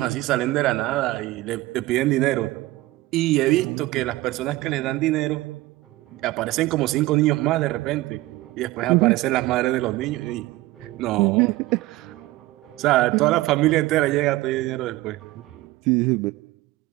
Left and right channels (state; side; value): quieter; left; 18.3 dB